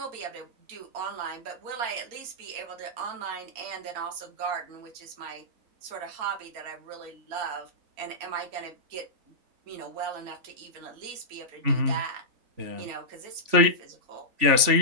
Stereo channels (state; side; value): late; left; 3.5 ms